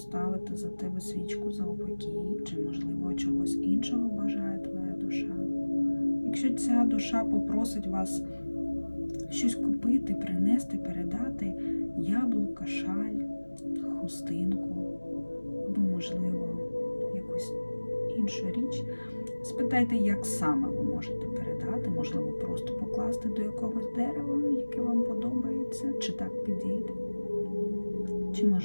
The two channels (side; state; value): both; inverted; correlation -1.00